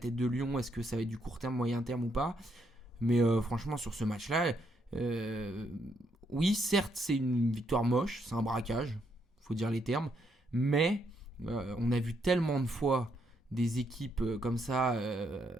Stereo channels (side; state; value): both; normal; correlation 0.75